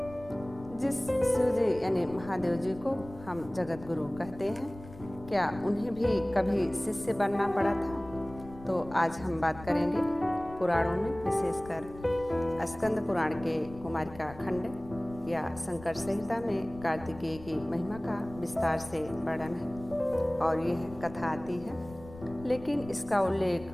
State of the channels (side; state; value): left; noise; rumble, 17 dB below the sound